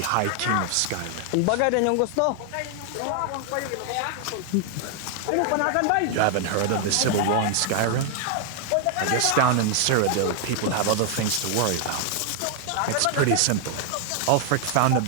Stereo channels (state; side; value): different; both; correlation 0.00